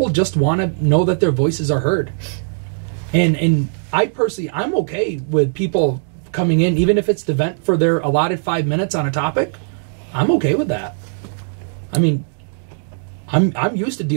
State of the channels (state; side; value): silent; left; digital silence